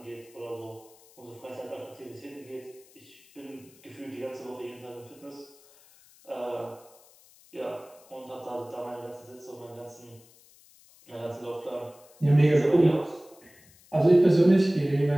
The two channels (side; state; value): left; noise; hiss, 26 dB below the sound